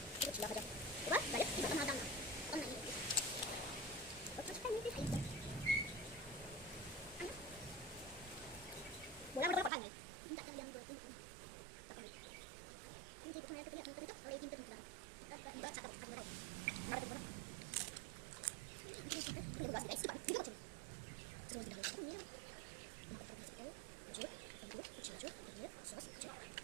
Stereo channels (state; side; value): drops out; left; at 9.7 s